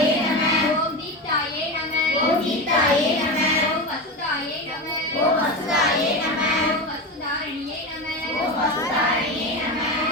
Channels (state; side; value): normal; both; correlation 0.21